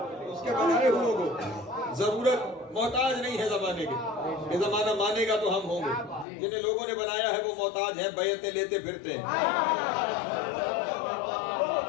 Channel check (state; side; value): drops out; right; at 6.2 s